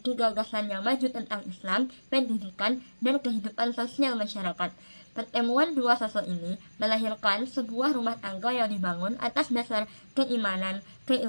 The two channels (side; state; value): both; inverted; correlation -1.00